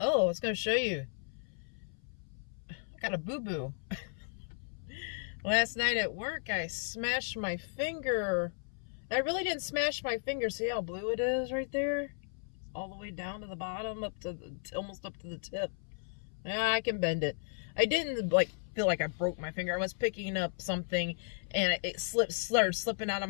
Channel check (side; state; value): right; silent; 55 dB below the other